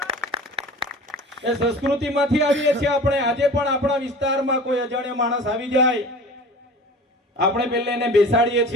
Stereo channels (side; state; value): both; normal; correlation 0.40